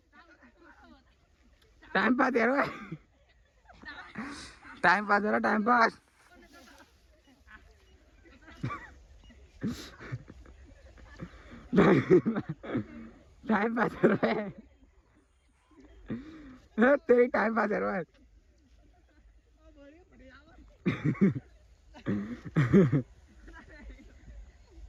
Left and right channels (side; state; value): both; identical; correlation 1.00